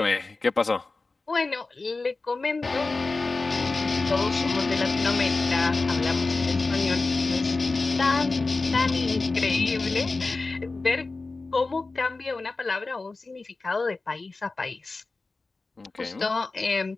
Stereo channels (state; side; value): quieter; right; 3.6 dB